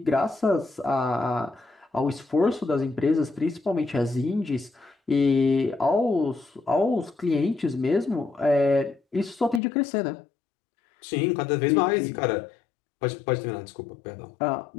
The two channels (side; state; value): right; drops out; at 9.6 s